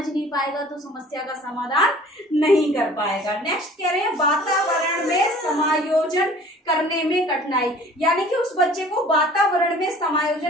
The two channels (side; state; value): both; normal; correlation 0.49